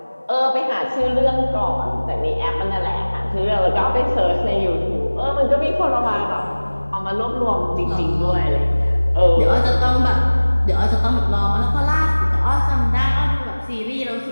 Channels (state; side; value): inverted; both; correlation -1.00